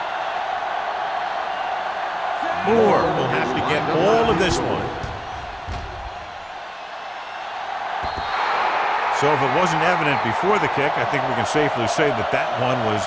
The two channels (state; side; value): identical; both; correlation 1.00